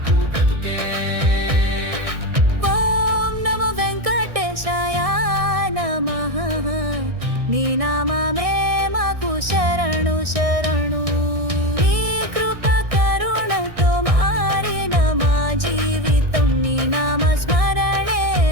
బ్రతుకే. ఓం నమో వెంకటేశాయ నమః. నీ నామమే మాకు శరణు శరణు. నీ కృప కరుణతో మారిన మా జీవితం, నీ నామ స్మరణే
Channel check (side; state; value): left; late; 1.6 ms